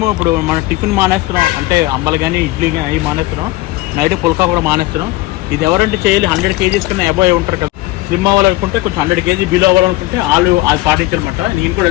ఇప్పుడు మనం టిఫిన్ మానేస్తున్నాం, అంటే అంబలు కానీ ఇడ్లీ కానీ అవి మానేస్తున్నాం. నైట్ పుల్కా కూడా మానేస్తున్నాం. ఇది ఎవరంటే చేయాలి 100 kgs కన్నా అబోవ్ ఉంటారు కదా. స్లిమ్ అవ్వాలనుకుంటే కొంచెం 100 kg బిలో అవ్వాలనుకుంటే వాళ్ళు అది పాటించారనమాట. నేను కూడా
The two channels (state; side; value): quieter; right; 18.7 dB